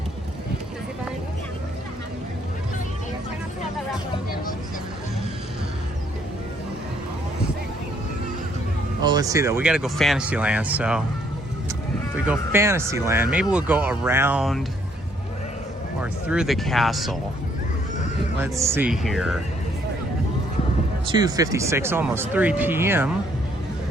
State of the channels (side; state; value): both; normal; correlation 0.67